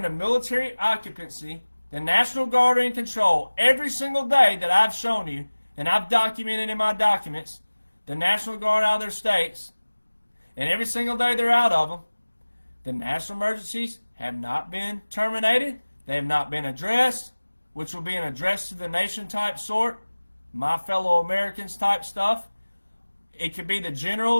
a military occupancy. The National Guard are in control every single day that I've shown you, and I've documented in my documents, the National Guard out of their states, and every single day they're out of them. The national emergencies have not been terminated. They have not been addressed, which will be an address to the nation type sort, my fellow Americans type stuff. It could be the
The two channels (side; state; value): both; inverted; correlation -1.00